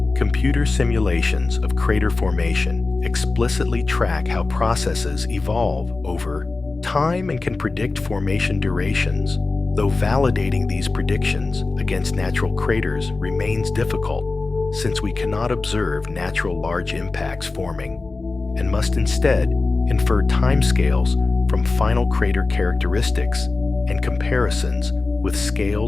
Computer simulations of crater formation explicitly track how processes evolve over time and can predict formation durations, though validating these predictions against natural craters remains difficult, since we cannot observe natural large impacts forming, and must instead infer timescales from final crater characteristics and comparisons with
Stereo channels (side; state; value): right; quieter; 3.6 dB